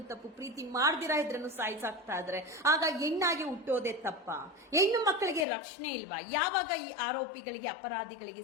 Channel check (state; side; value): drops out; right; at 5.5 s